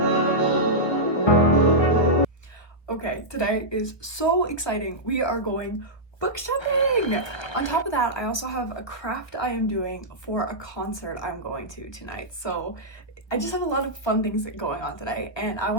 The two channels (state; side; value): late; right; 1.4 ms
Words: Okay, today is so exciting. We are going book shopping! On top of that, I also have a craft I am doing for a concert I'm going to tonight. So I just have a lot of fun things going on today, and I